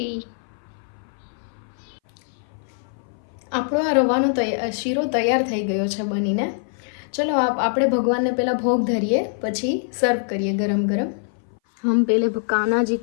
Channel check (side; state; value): right; silent; 59 dB below the other